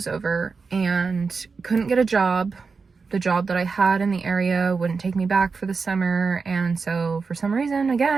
over and couldn't get a job. The job that I had in the area wouldn't take me back for the summer. And so for some reason,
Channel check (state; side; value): quieter; left; 4.8 dB